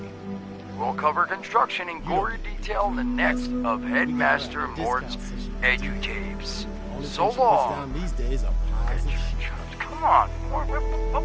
we'll cover construction in gory detail in the next of Headmaster Mort's edutapes. Only So thing she puts long. down these days are pies and shit. Come on, Mort, what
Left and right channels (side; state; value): both; identical; correlation 1.00